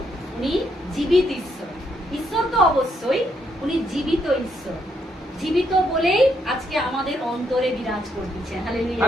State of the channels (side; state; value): both; normal; correlation 0.75